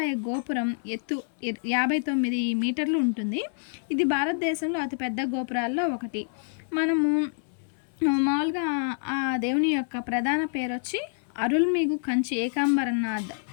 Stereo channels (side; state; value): right; silent; 60 dB below the other